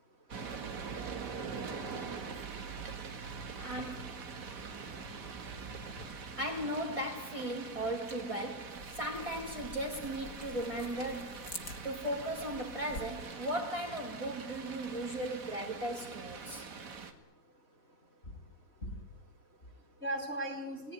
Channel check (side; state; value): right; late; 4.1 ms